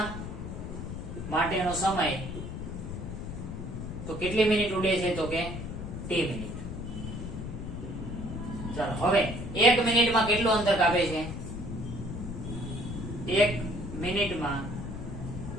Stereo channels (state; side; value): noise; left; rumble, 7 dB below the sound